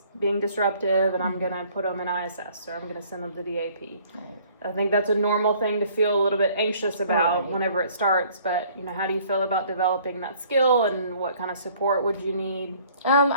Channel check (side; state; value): both; inverted; correlation -0.57